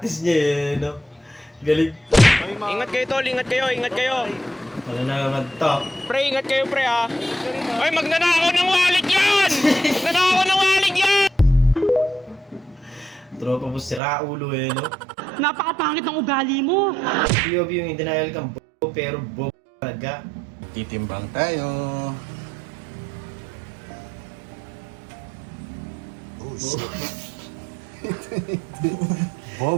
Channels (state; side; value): drops out; left; at 14.0 s